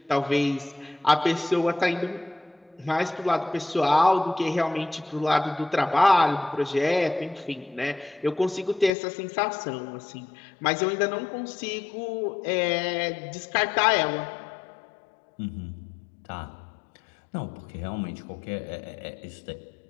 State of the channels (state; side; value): drops out; right; at 8.9 s